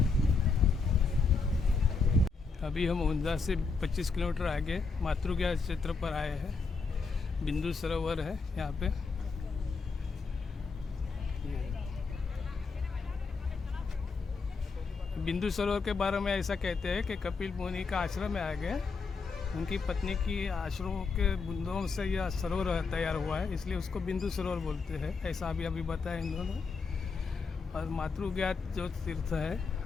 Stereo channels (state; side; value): quieter; right; 4.6 dB